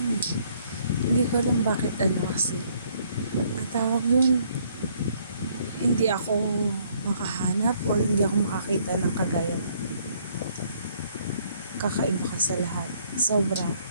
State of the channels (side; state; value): both; inverted; correlation -0.65